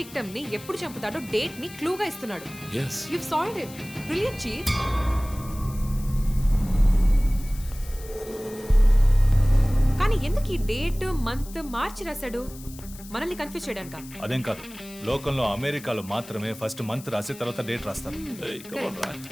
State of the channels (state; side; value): noise; left; hiss, 18 dB below the sound